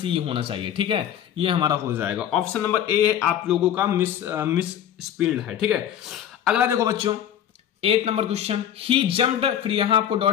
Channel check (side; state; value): right; quieter; 10.1 dB